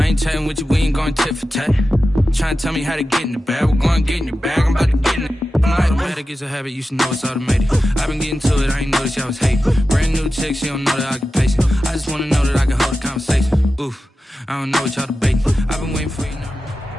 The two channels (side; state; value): both; normal; correlation 0.93